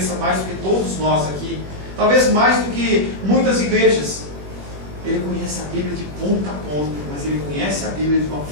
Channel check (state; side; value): late; left; 21 ms